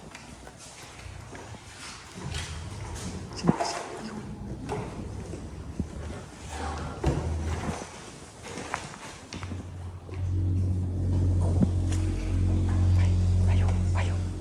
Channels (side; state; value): both; identical; correlation 1.00